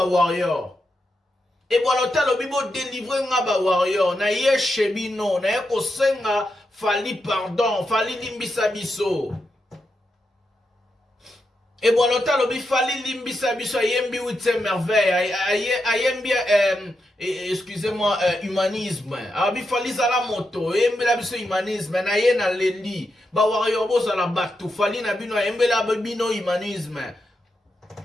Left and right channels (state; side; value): normal; both; correlation 0.85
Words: warrior. Et voilà, l'obibo délivrer un warrior. Na ye chebino, na ye kosenga Fally pardon, Fally limbisa biso. Et voilà, l'obi Fally limbisa biso, ayembi huitième merveille, ayembi, excusez-moi, humanisme. Abi Fally zala moto, ayembi la biso humanisme, na ye na lendi. Ba warrior bo zala batu, Fally na bino, ayembi la bino humanisme.